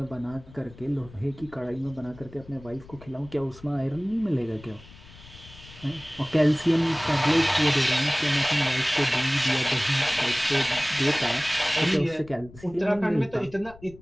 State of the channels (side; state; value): left; noise; rumble, 20 dB below the sound